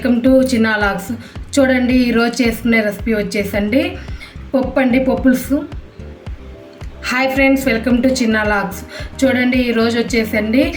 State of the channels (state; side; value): identical; both; correlation 1.00